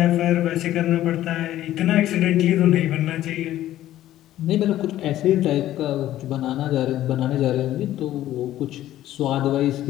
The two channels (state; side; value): quieter; right; 13.5 dB